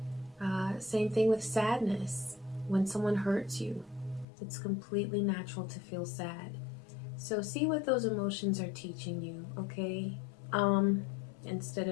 Same thing with sadness. When someone hurts you, it's completely natural to feel sad. So see what those emotions are teaching you, okay? Instead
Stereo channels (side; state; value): right; drops out; at 4.2 s